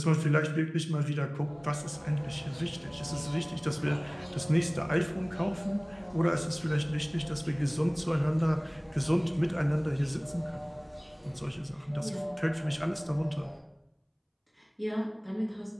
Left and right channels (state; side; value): identical; both; correlation 1.00